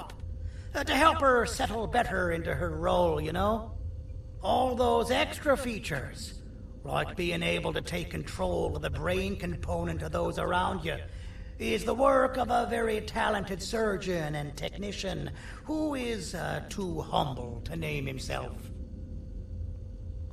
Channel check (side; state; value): both; identical; correlation 1.00